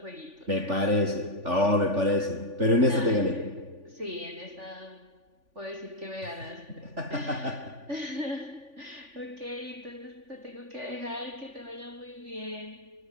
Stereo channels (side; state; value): left; late; 3.5 ms